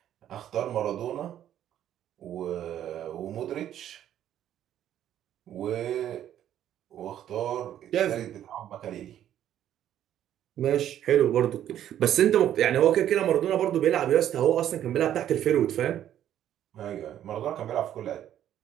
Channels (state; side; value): quieter; left; 11.1 dB